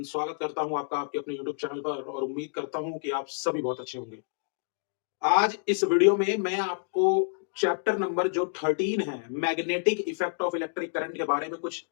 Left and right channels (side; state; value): right; silent; digital silence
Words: स्वागत करता हूँ आपका आपके अपने यूट्यूब चैनल पर और उम्मीद करता हूँ कि आप सभी बहुत अच्छे होंगे। आज इस वीडियो में मैं आपको चैप्टर नंबर जो 13 है, magnetic effect of electric current के बारे में कुछ